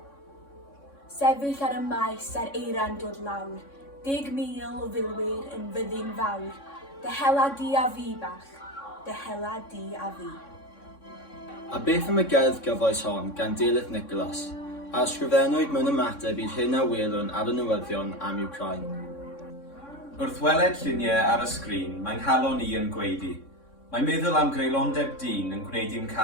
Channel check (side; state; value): right; late; 3.6 ms